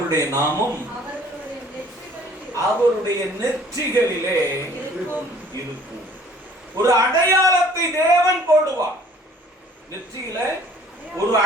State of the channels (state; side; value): normal; both; correlation 0.54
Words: நாமம் அவருடைய நெற்றிகளிலே இருக்கும். ஒரு அடையாளத்தை தேவன் போடுவார். நெற்றியில ஒரு